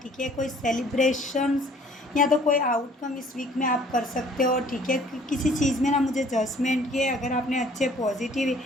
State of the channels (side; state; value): both; normal; correlation 0.56